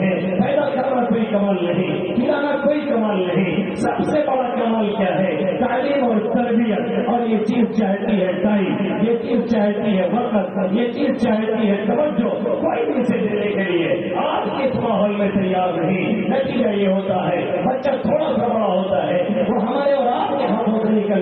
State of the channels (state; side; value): identical; both; correlation 1.00